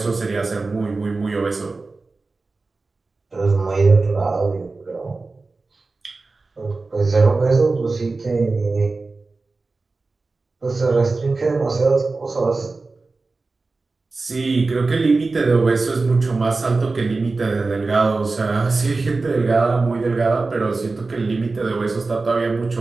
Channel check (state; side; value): quieter; left; 3.7 dB